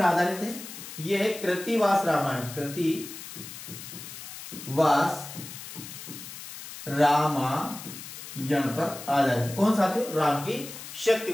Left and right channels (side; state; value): left; noise; hiss, 12 dB below the sound